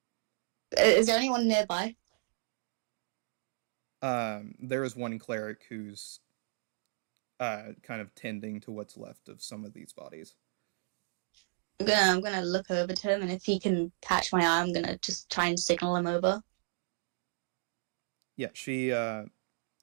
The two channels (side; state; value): left; silent; digital silence